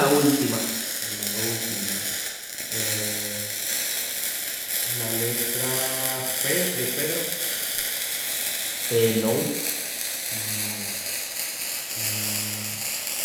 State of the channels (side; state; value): both; identical; correlation 1.00